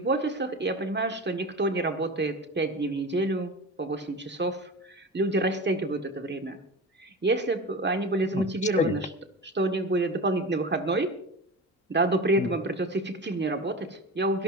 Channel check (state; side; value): normal; both; correlation 0.30